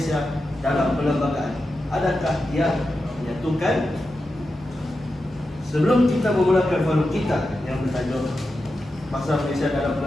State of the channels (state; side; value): normal; both; correlation 0.90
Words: dalam Perlembagaan. Adakah yang menyatukan? Sebelum kita memulakan forum kita yang bertajuk Bahasa Malaysia dalam